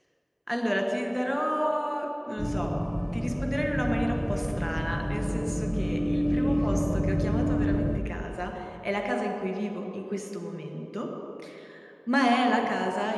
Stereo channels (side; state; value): both; identical; correlation 1.00